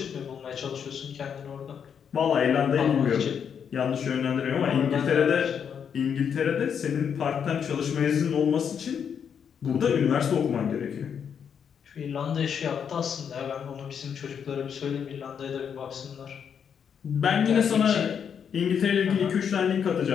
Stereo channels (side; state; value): right; quieter; 7.5 dB